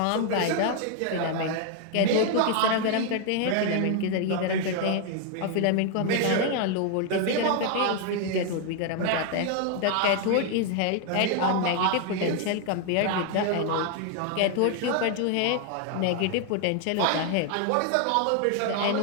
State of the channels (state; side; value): different; both; correlation 0.00